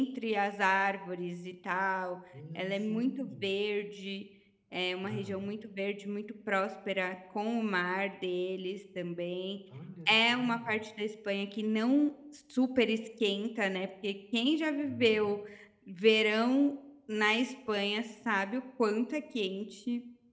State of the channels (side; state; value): both; identical; correlation 1.00